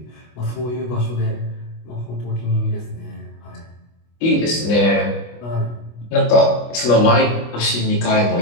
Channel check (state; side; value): late; right; 25 ms